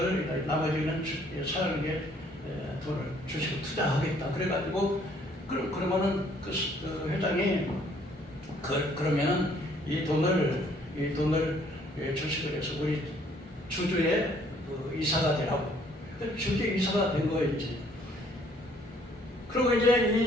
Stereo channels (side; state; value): both; normal; correlation 0.62